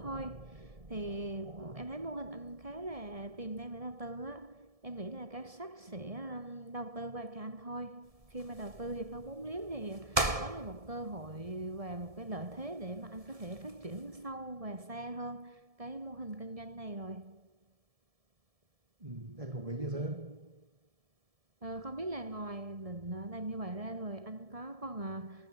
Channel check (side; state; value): left; late; 1.7 ms